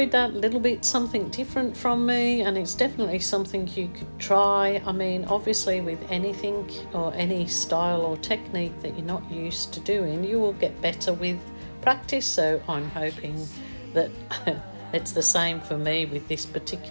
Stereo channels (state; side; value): inverted; both; correlation -1.00